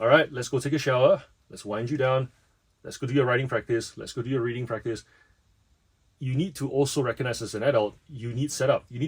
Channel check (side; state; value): both; identical; correlation 1.00